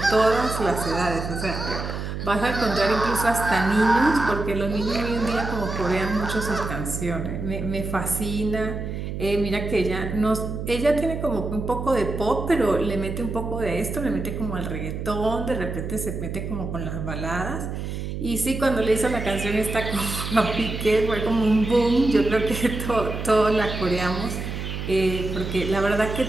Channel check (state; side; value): noise; right; hum, 5 dB below the sound